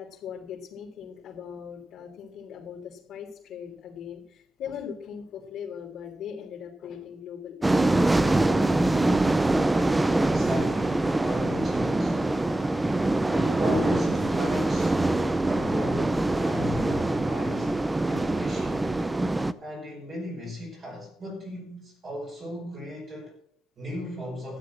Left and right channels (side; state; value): both; normal; correlation 0.94